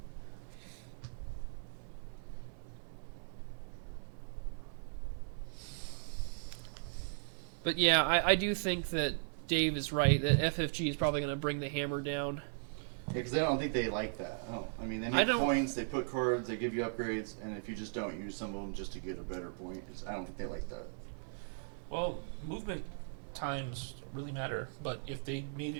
But yeah, I do think that Dave is right, that FFG is probably going to bring the hammer down. Yeah, because I don't think they like that. I mean, they I make don't- points, they put cards, they give you upgrades, and if you just don't use some of them just to get a better point, I don't think they like that. Well, movement times really matter, but if they made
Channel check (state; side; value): silent; left; 53 dB below the other